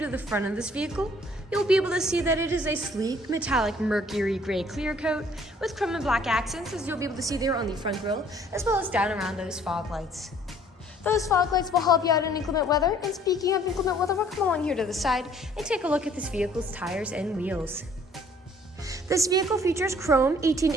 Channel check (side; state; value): both; normal; correlation 0.58